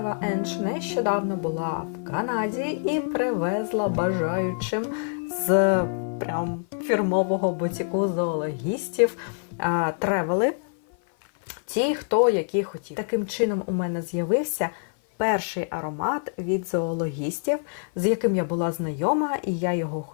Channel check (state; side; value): silent; right; 56 dB below the other